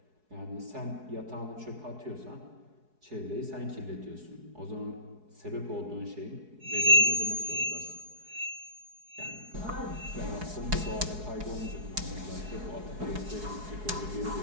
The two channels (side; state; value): left; late; 4.7 ms